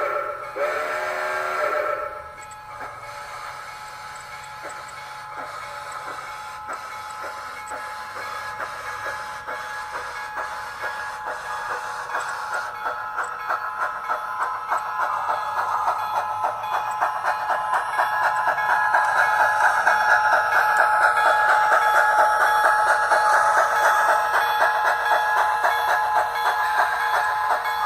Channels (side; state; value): both; identical; correlation 1.00